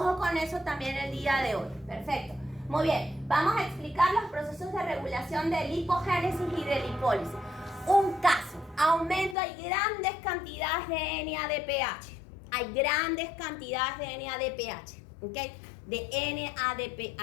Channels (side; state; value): right; drops out; at 9.3 s